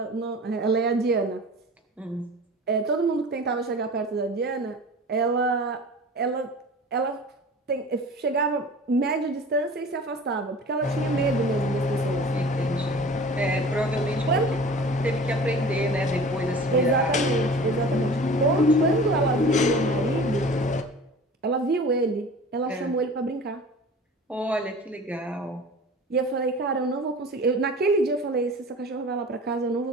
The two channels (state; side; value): normal; both; correlation 0.40